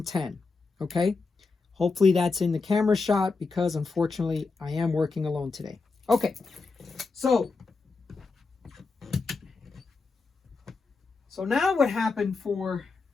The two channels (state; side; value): quieter; right; 4.2 dB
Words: okay? Hopefully that's in the camera shot because unfortunately I am working alone today. Okay, so now what happened for